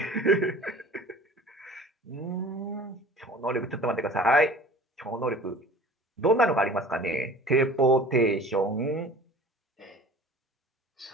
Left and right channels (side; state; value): both; normal; correlation 0.43